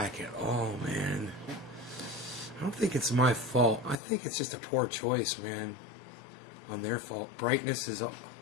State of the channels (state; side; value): drops out; right; at 4.0 s